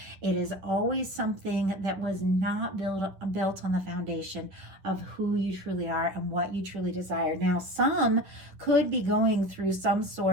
it is always something that was not built on the foundation of who you truly are and what you truly desire. Now, some could be going through some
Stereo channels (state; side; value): late; left; 10 ms